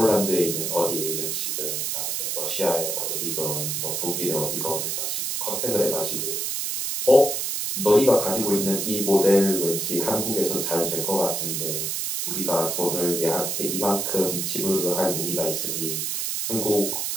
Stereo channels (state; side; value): noise; right; hiss, 1 dB below the sound